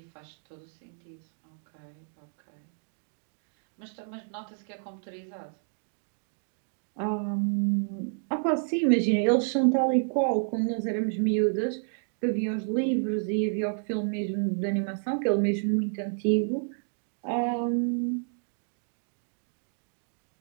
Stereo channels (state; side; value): silent; left; digital silence